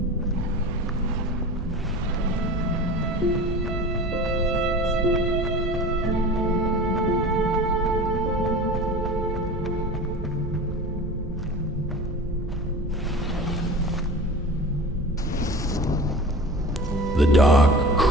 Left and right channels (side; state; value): right; noise; hum, 9 dB below the sound